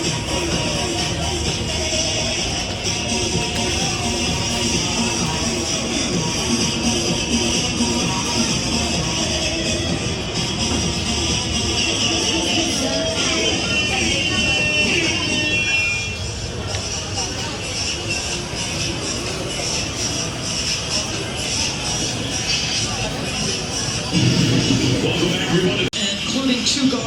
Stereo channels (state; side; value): identical; both; correlation 1.00